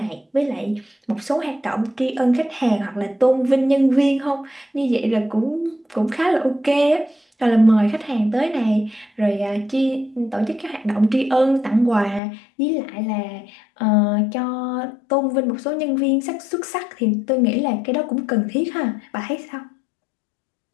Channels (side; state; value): right; drops out; at 12.2 s